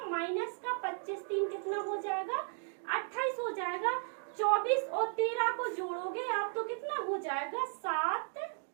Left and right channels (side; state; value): left; silent; 54 dB below the other